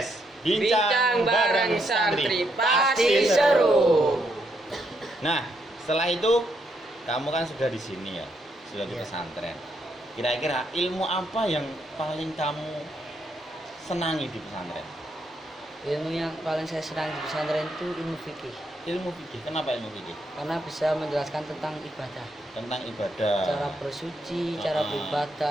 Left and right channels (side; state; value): both; normal; correlation 0.77